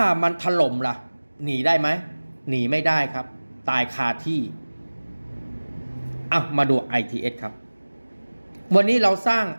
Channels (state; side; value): inverted; both; correlation -1.00